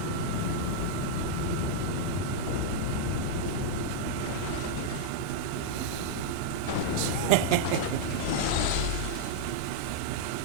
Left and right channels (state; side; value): different; both; correlation -0.02